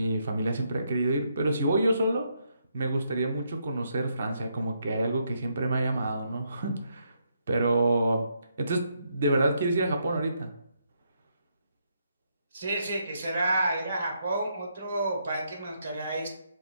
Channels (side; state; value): both; inverted; correlation -0.77